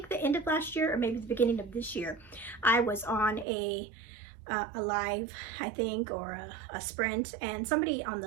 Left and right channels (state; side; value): drops out; left; at 3.5 s